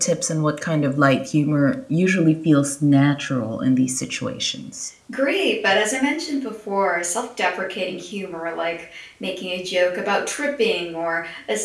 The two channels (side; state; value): both; identical; correlation 1.00